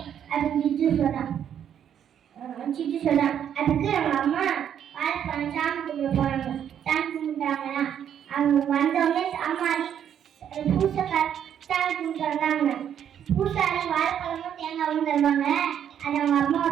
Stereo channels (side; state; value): left; quieter; 9.2 dB